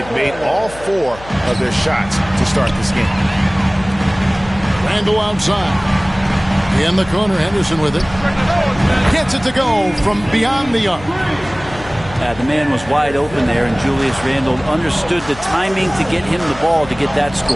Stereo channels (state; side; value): noise; left; hum, 17 dB below the sound